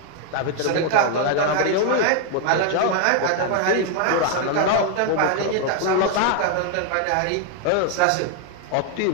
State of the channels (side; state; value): both; different; correlation 0.00